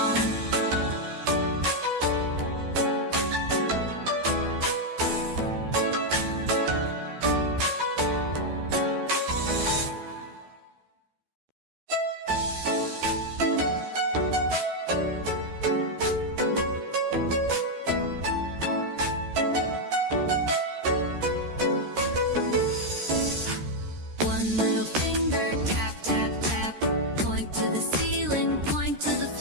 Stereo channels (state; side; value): late; left; 13 ms